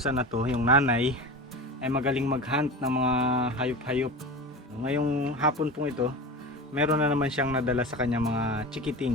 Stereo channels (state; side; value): normal; both; correlation 0.29